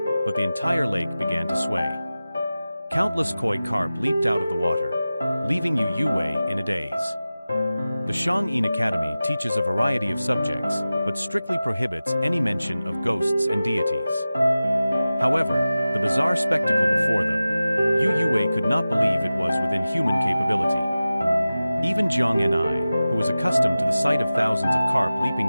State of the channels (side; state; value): both; inverted; correlation -0.96